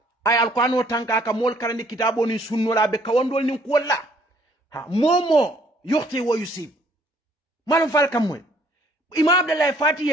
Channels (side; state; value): both; normal; correlation 0.62